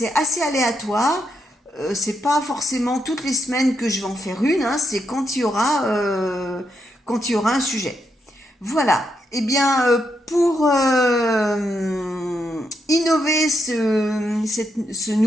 assez aléatoire. C'est pas forcément toutes les semaines que je vais en faire une, hein, c'est quand il y aura un sujet. Voilà. Eh bien, pour innover ce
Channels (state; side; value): normal; both; correlation 0.80